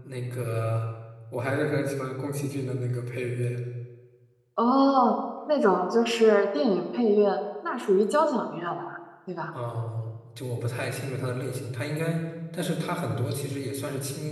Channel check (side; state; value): both; identical; correlation 1.00